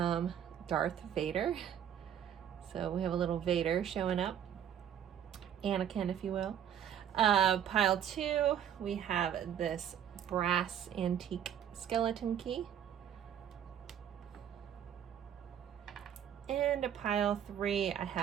Darth Vader. So we have a little Vader showing up, Anakin, if you will. Pile 2, we have this brass antique skeleton key. And a pile 3, I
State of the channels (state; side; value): quieter; left; 9.5 dB